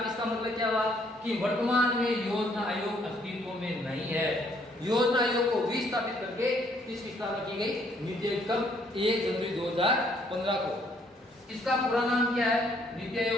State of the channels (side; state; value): both; normal; correlation 0.66